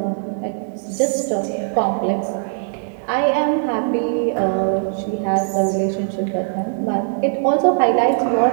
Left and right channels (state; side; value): silent; left; digital silence